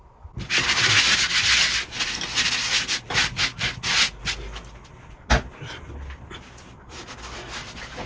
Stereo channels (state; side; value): identical; both; correlation 1.00